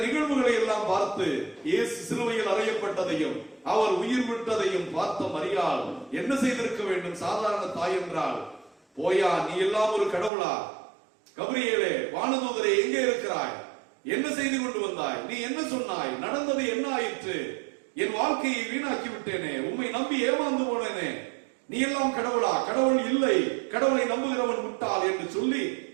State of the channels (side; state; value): left; drops out; at 10.3 s